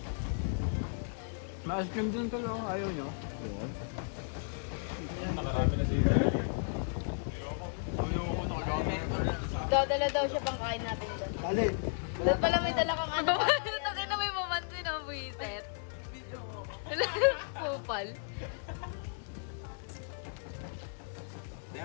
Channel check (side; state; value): right; silent; 55 dB below the other